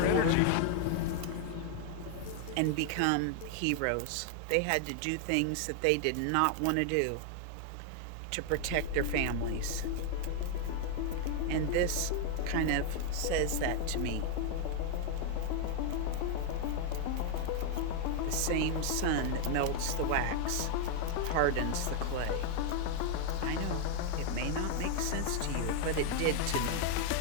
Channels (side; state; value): both; different; correlation 0.00